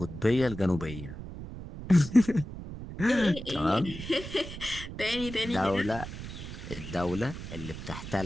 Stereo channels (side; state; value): right; noise; rumble, 10 dB below the sound